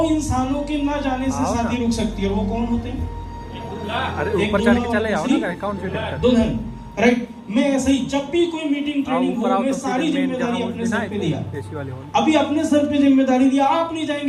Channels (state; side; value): identical; both; correlation 1.00